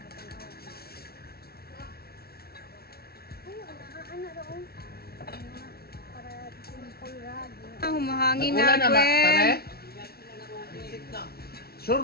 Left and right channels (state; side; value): late; right; 0.45 ms